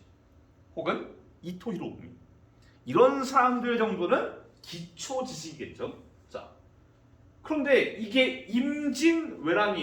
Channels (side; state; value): both; identical; correlation 1.00